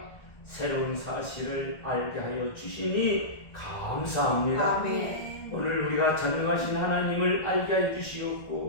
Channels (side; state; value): right; late; 1.6 ms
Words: 새로운 사실을 알게 하여 주시니 감사합니다. 아멘. 오늘 우리가 전능하신 하나님을 알게 해